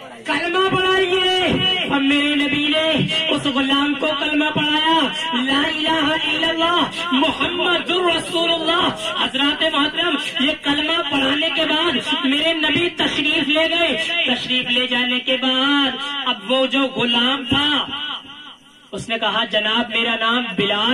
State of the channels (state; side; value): identical; both; correlation 1.00